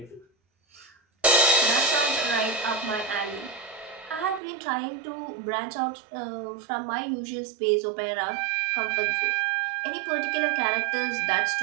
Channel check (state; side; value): drops out; left; at 4.4 s